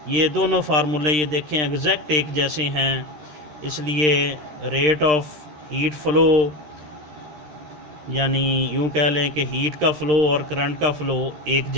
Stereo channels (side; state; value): left; late; 13 ms